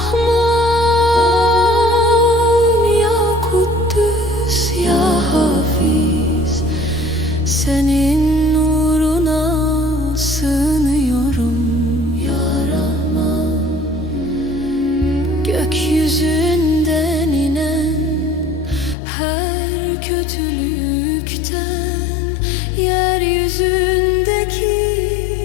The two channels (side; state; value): right; drops out; at 18.9 s